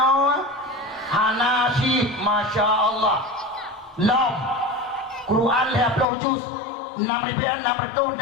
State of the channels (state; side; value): drops out; right; at 6.1 s